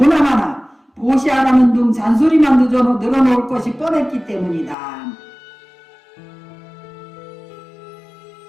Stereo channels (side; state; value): right; drops out; at 4.8 s